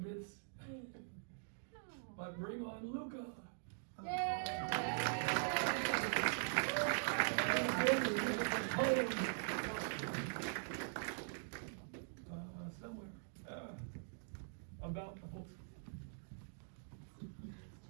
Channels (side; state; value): left; silent; digital silence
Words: but bring on Luca. Somewhere about the whole.